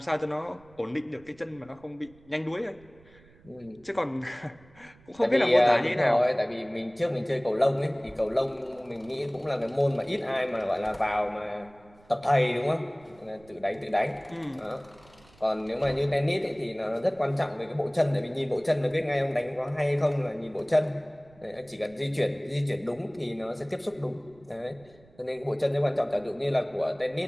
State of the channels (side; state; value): right; noise; rumble, 27 dB below the sound